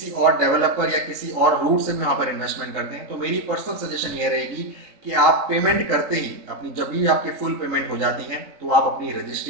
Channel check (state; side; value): late; left; 3.7 ms